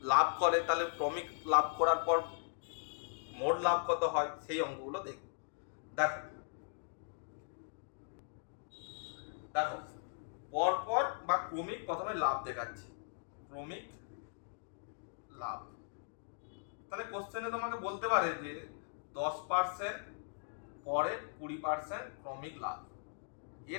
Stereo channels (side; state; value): right; silent; digital silence